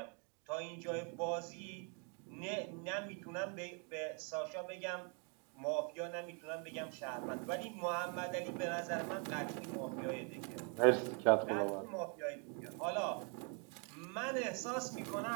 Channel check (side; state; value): left; quieter; 37.9 dB